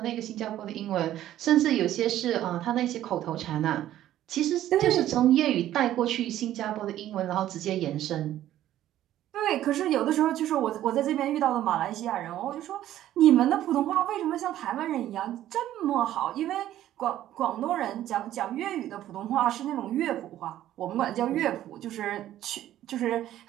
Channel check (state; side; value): quieter; left; 12.8 dB